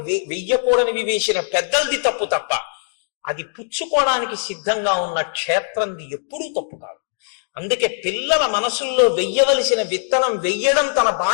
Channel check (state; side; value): silent; right; digital silence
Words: వేసిన పెద్దలది తప్పు తప్ప అది పుచ్చుకోవడానికి సిద్ధంగా ఉన్న క్షేత్రంది ఎప్పుడూ తప్పు కాదు. అందుకే పిల్లల మనసుల్లో వెయ్యవలసిన విత్తనం వెయ్యడం తన